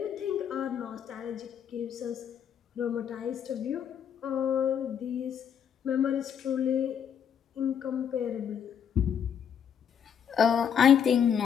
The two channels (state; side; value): quieter; right; 8.2 dB